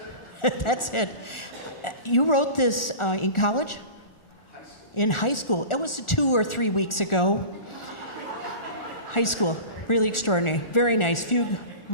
That's it. You wrote this in college? In high school. It was 2 or 3 weeks ago. High school. Really extraordinary. Very nice. Fugue,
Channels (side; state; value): right; late; 1.4 ms